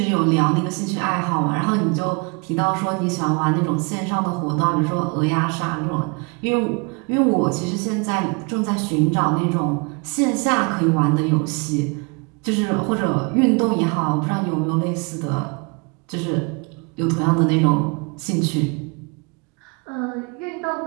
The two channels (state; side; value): quieter; left; 31.9 dB